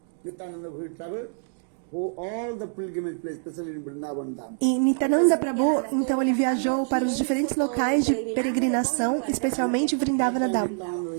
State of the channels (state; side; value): silent; left; digital silence